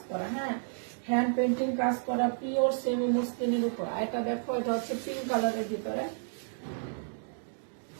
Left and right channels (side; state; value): left; silent; digital silence